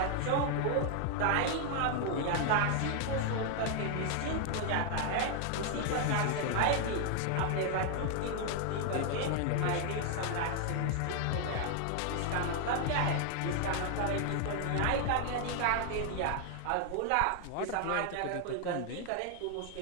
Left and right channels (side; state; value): both; different; correlation 0.00